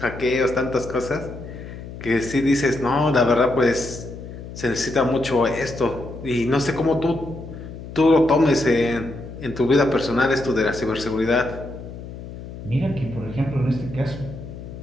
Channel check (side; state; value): left; noise; hum, 12 dB below the sound